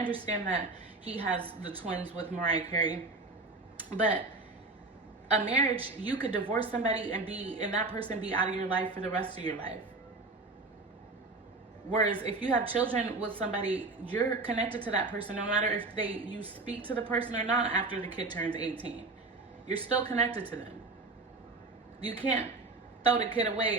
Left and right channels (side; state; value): left; quieter; 3.4 dB